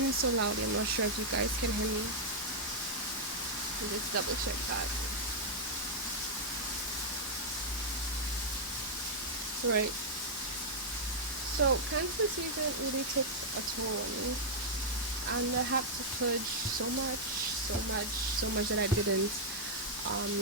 so loudly. I'm not sure if you guys can hear me. Let's double check that. Right. So Cancer season really took a toll on me, and I had to purge so much that I didn't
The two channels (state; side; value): normal; both; correlation -0.05